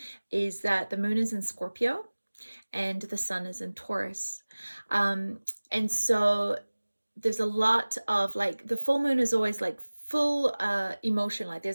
is that the moon is in Scorpio and the sun is in Taurus. And so there's a lot of like the full moon is always like full emotion, like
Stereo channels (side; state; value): both; inverted; correlation -1.00